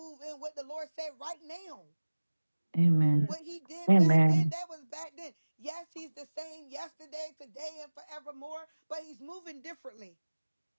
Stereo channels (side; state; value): both; inverted; correlation -1.00